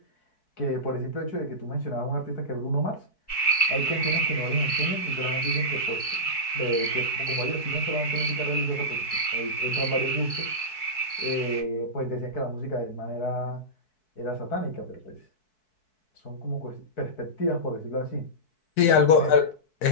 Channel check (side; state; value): right; late; 4.6 ms